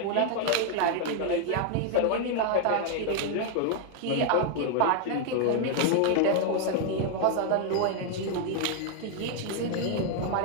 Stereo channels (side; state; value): both; different; correlation 0.00